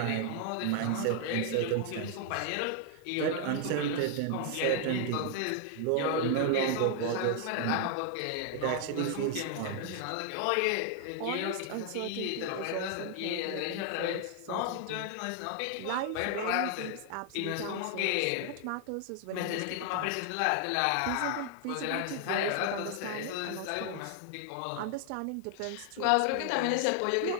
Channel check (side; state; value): both; different; correlation 0.00